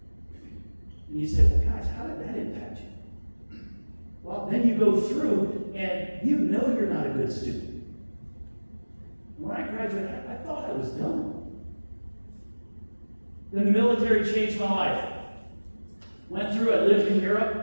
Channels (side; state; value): both; inverted; correlation -1.00